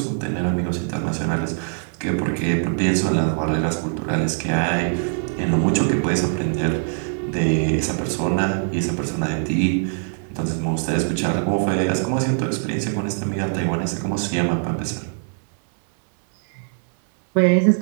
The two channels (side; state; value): left; silent; 60 dB below the other